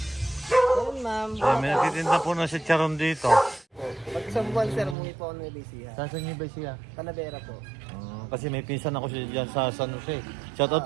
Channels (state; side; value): drops out; left; at 5.0 s